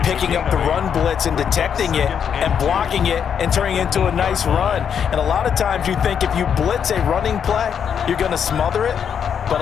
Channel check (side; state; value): right; quieter; 7.8 dB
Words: picking up the run blitz and detecting it and blocking it and turning it into a nice run. And a lot of times you think if you blitz a running play, you're going to smother it. But